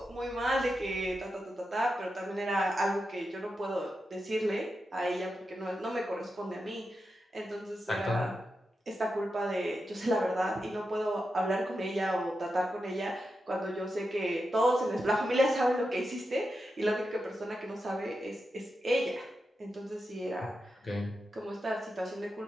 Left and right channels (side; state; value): both; normal; correlation 0.89